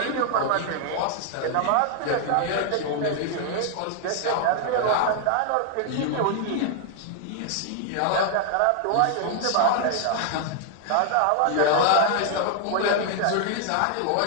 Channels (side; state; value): both; different; correlation 0.00